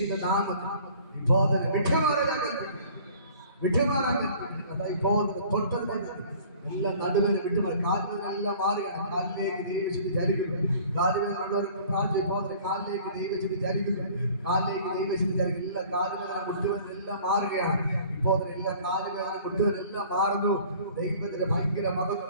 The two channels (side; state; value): both; inverted; correlation -0.50